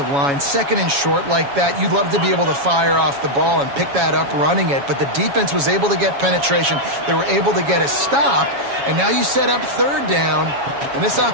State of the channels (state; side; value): late; left; 7.2 ms